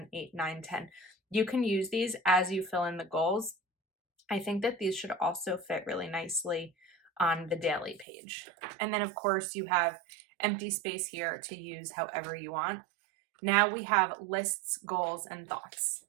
8, 9, 10. You can use these as you fill in the goals. I think that these should also fit really nicely on the daily page. And then of course you have empty space here to use however you want. Now we have lists, goals, and thoughts.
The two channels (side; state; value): left; drops out; at 8.1 s